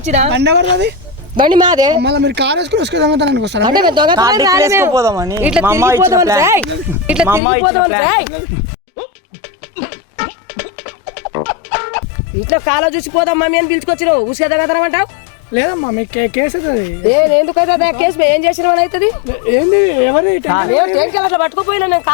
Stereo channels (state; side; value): drops out; right; at 7.4 s